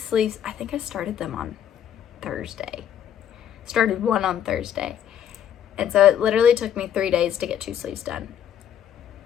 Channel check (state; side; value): quieter; right; 9.6 dB